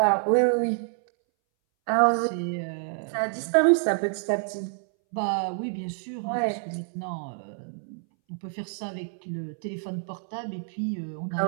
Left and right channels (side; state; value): left; silent; 60 dB below the other